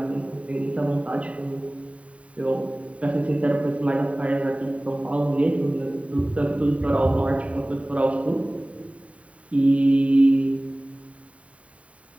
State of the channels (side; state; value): left; late; 0.065 ms